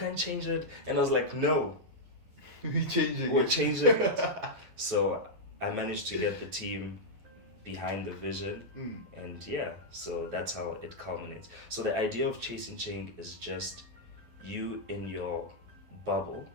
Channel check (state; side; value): late; left; 12 ms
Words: change it. And I was like, no, We're changing we're it. changing it. So I managed to get the team behind the vision, and so that's how it culminates. So the idea of chasing change is just you in your bubble,